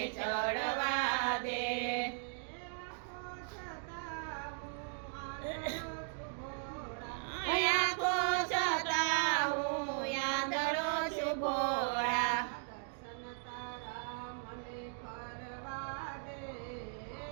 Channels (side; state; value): left; silent; 53 dB below the other